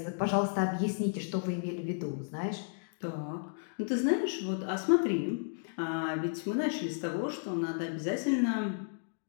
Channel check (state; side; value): silent; right; digital silence